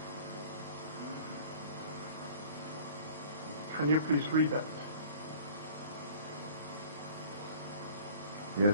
Can you please read that? Yes,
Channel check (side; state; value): both; inverted; correlation -0.48